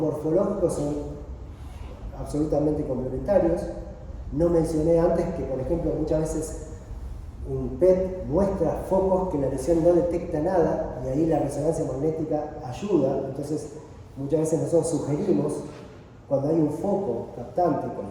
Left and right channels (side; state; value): both; identical; correlation 1.00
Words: son absolutamente complementarios. No mencioné antes que, por ejemplo, muchas veces un PET muestra focos que la lesión no detecta nada y ahí la resonancia magnética ayuda. Entonces, muchas veces nosotros sugerimos, cuando hay un foco captante, con